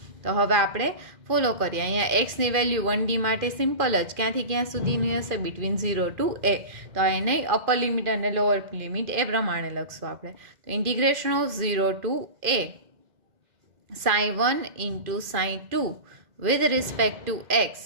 તો હવે આપણે ફોલો કરીએ. અહીંયા એક્સની વેલ્યુ 1D માટે સિમ્પલ જ ક્યાંથી ક્યાં સુધીની હશે? Between 0 to a. તો એને અપર લિમિટ અને લોઅર લિમિટ એ પ્રમાણે લખશું આપણે. તો integration of 0 to a sin1 into sin2 with respect to x.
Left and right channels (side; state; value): left; late; 2.4 ms